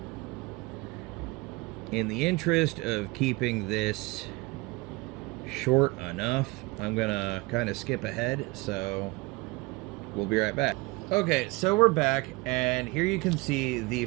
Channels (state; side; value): quieter; left; 23.5 dB